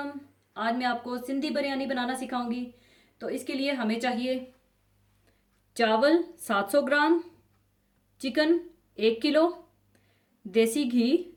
आज मैं आपको सिंधी बिरयानी बनाना सिखाऊंगी। तो इसके लिए हमें चाहिए चावल 700 ग्राम, चिकन 1 किलो, देसी घी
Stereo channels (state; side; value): identical; both; correlation 1.00